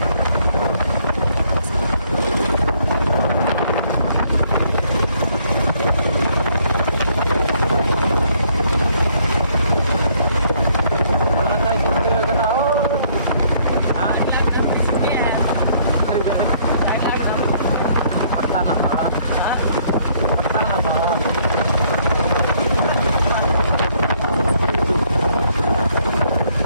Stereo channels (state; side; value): inverted; both; correlation -0.65